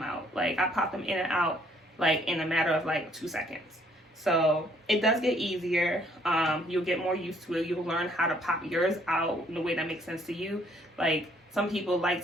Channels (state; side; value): normal; both; correlation 0.64